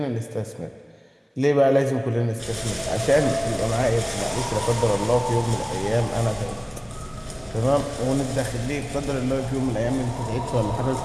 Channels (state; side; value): identical; both; correlation 1.00